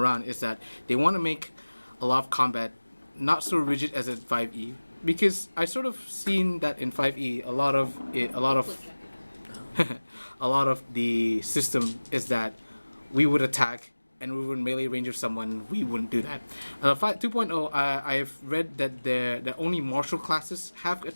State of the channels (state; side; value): inverted; both; correlation -1.00